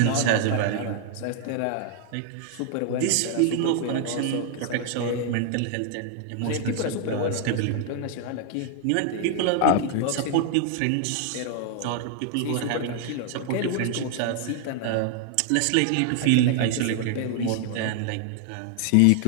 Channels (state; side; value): different; both; correlation 0.00